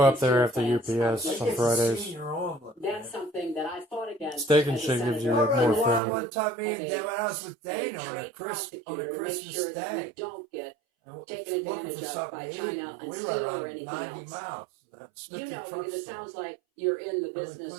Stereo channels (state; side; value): drops out; left; at 6.0 s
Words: up American there steel after plants UPS are on like Fridays. Senior omelet. That's something that I fought against. Steak and as a shake gives you, senator. like, I more rode around food. one time, me and As a- Dad went out with a Dana on a trade Christmas make sure that we Day. don't get And taken looking advantage for of something by to eat. China on We steel rode or around anything 90 else. miles. That's You know, truck because it stop. sounds like you're in the Other business or